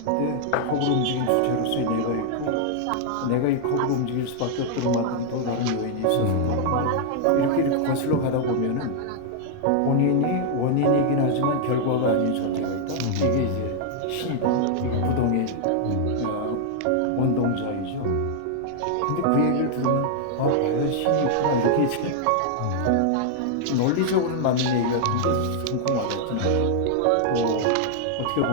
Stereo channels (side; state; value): both; different; correlation 0.00